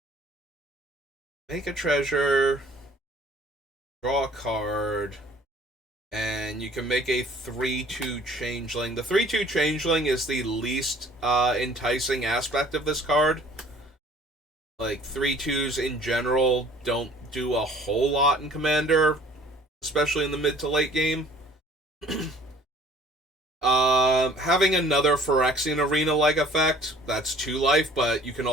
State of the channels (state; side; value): normal; both; correlation 0.53